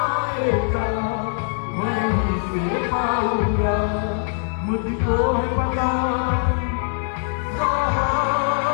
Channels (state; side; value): silent; right; digital silence